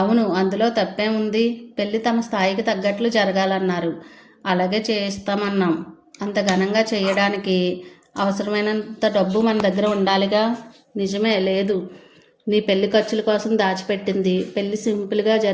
అందులో తప్పేముంది? పెళ్లి తమ స్థాయికి తగ్గట్లు జరగాలన్నారు. అలాగే చేస్తామన్నాం. అంత ఘనంగా చేయడానికి అవసరమైనంత డబ్బు మన దగ్గర ఉండాలిగా. నిజమే, లేదు. నీ పెళ్లి ఖర్చుల కోసం దాచిపెట్టింది పెళ్లి సింపుల్గా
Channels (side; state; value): both; identical; correlation 1.00